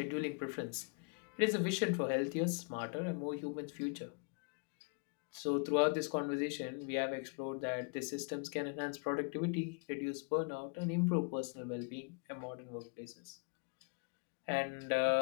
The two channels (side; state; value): right; quieter; 37.8 dB